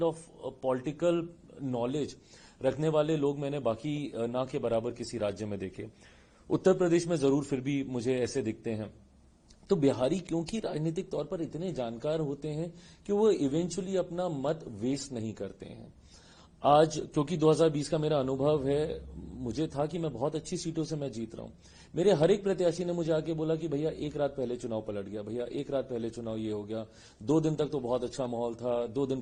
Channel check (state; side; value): identical; both; correlation 1.00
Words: of political knowledge रखने वाले लोग मैंने बाकी ना के बराबर किसी राज्य में देखे। उत्तर प्रदेश में जरूर फिर भी मुझे ऐसे दिखते हैं। तो बिहारी क्योंकि राजनीतिक तौर पर इतने जानकार होते हैं कि वो इवेंचुअली अपना मत वेस्ट नहीं करते हैं। आज क्योंकि 2020 का मेरा अनुभव है, मुझे था कि मैं बहुत अच्छी सीटों से मैं जीत रहा हूं। मेरे हर एक प्रत्याशी ने मुझे आके बोला कि भैया एक रात पहले चुनाव पलट गया, भैया एक रात पहले चुनाव ये हो गया, 2 दिन तक तो बहुत अच्छा माहौल था, 2 दिन